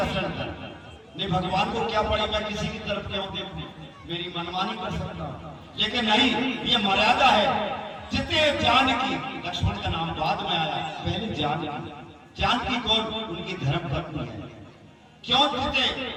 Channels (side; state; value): both; identical; correlation 1.00